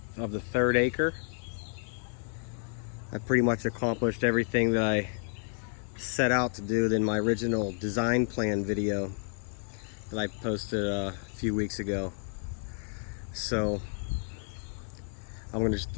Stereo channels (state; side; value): silent; right; 57 dB below the other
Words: third acre. I pretty much accomplished everything that I set out to do in my original design plan video that I posted a few weeks ago. So I'm going to just